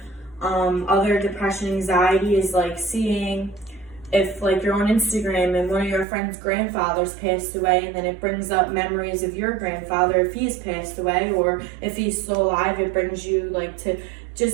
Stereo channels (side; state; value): left; drops out; at 6.1 s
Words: Other depression, anxiety is like seeing if like you're on Instagram and one of your friends' grandfathers passed away, and then it brings up memories of your grandfather if he's passed away, or if he's still alive, it brings you like to